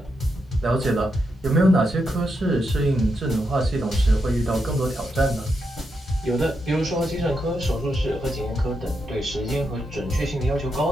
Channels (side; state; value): both; normal; correlation 0.84